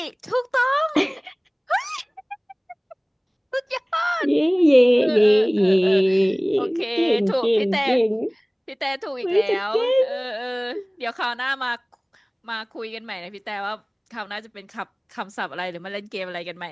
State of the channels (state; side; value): identical; both; correlation 1.00